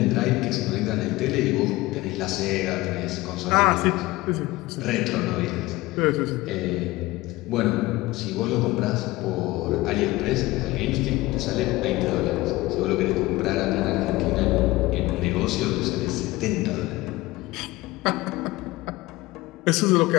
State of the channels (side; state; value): right; quieter; 19.5 dB